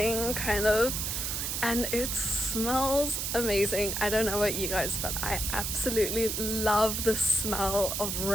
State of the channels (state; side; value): noise; right; hiss, 2 dB below the sound